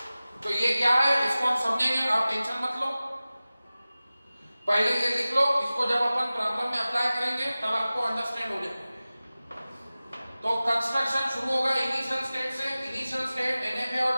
तो ये क्या है, इसको हम समझेंगे, आप tension मत लो। पहले ये लिख लो, इसको जब अपन प्रॉब्लम में अप्लाई करेंगे तब आपको अंडरस्टैंड हो जाएगा। तो कंस्ट्रक्शन शुरू होगा इनिशियल स्टेट से। इनिशियल स्टेट एनएफए और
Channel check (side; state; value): both; inverted; correlation -0.97